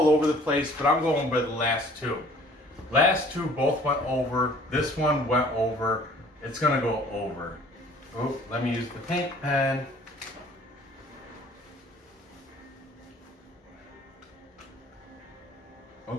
over the place, but I'm going by the last 2. Last 2 both went over. This one went over. It's gonna go over. Oh, let me use the pink pen.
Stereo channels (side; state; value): both; normal; correlation 0.52